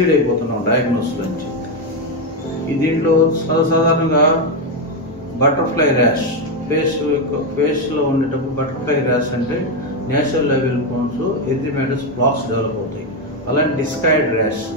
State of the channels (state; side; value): normal; both; correlation 0.07